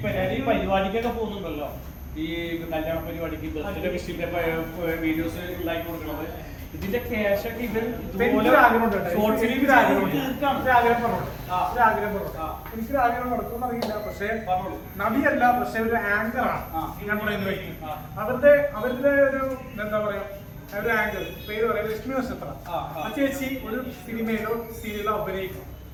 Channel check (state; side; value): identical; both; correlation 1.00